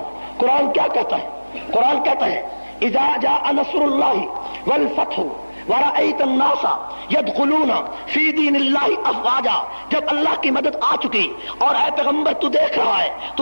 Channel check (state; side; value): inverted; both; correlation -1.00